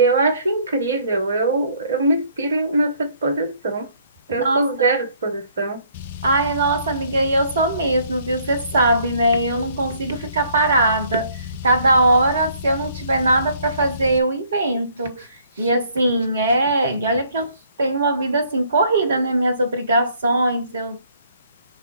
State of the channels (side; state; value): both; inverted; correlation -0.63